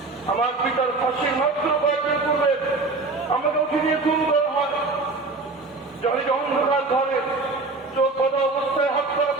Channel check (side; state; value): left; quieter; 3.6 dB